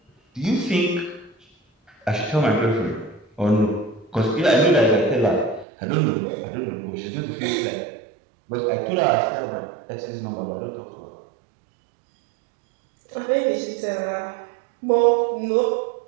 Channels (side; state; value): left; drops out; at 5.7 s